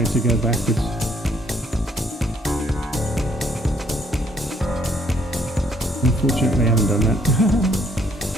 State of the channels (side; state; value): both; normal; correlation 0.66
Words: to go backwards. Unfortunately, I haven't done that.